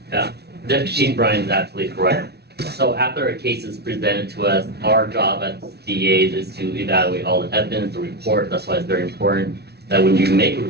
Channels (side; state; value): left; late; 0.48 ms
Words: Yeah, Deputy Chief Brian is absolutely correct. So after a case is presented to us, our job as DAs is to evaluate all the evidence, the report. That's why it's very important that when you make a